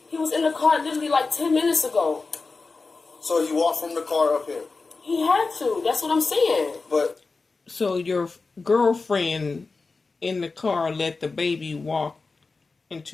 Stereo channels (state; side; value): quieter; right; 4.0 dB